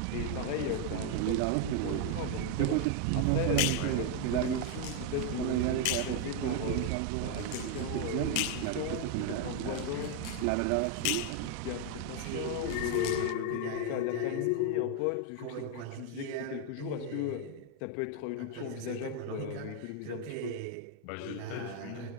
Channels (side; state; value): both; different; correlation 0.01